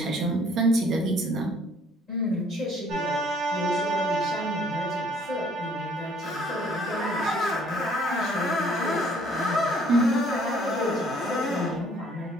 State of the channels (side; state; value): both; normal; correlation 0.60